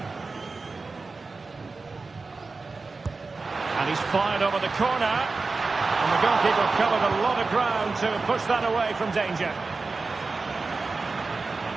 And he's fired over the corner. And the goalkeeper covered a lot of ground to push that away from danger.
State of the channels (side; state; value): left; quieter; 4.0 dB